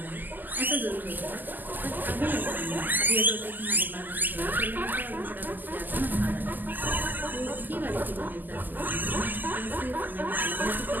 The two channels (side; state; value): left; late; 0.086 ms